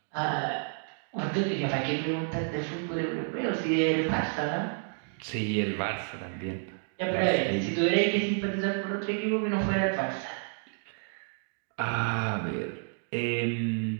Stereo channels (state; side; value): silent; left; 58 dB below the other